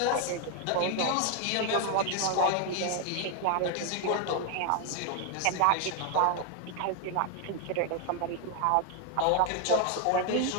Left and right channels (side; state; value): both; different; correlation 0.01